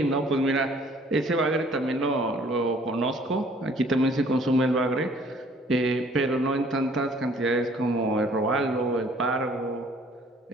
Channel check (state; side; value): normal; both; correlation 0.57